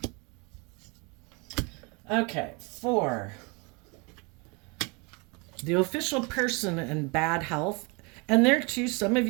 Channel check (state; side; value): quieter; left; 29.8 dB